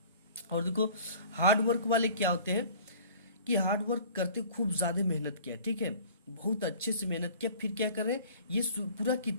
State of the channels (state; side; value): inverted; both; correlation -0.47